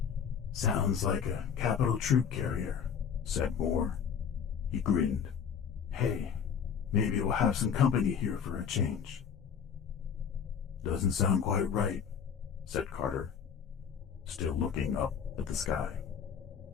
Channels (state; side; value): quieter; right; 7.4 dB